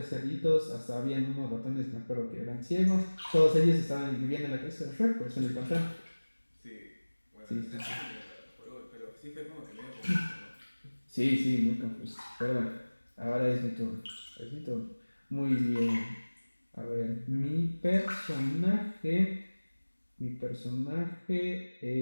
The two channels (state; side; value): inverted; both; correlation -1.00